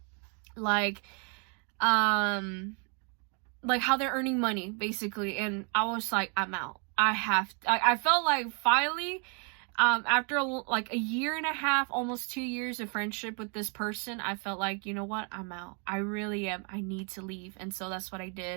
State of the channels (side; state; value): left; quieter; 37.7 dB